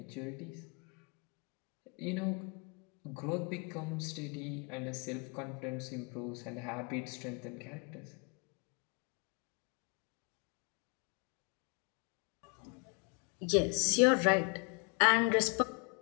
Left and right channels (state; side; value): quieter; right; 34.8 dB